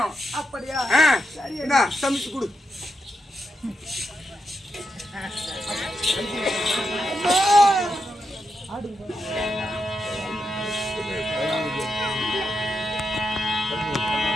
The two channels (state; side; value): normal; both; correlation 0.85